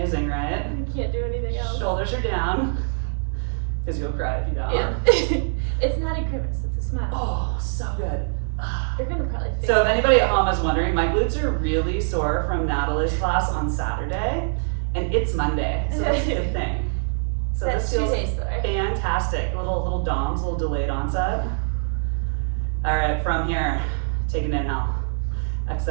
right? Can't do anything else. Shoulders are down, because you'll cry if you don't. Yeah. It's not a grimace, it's a smile. Oh, so good. You're gonna probably think So if anybody at home is wondering, my glutes are really sore from Natalie's class on Saturday, and it's Monday, so that's a good thing. So that's this 2 feels days though. fantastic. Little DOMs, little delayed onset. All right, from here, take an inhale.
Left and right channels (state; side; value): silent; left; digital silence